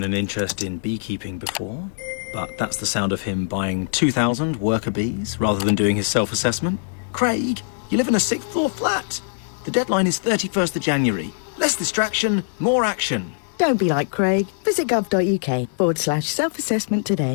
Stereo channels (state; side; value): silent; right; digital silence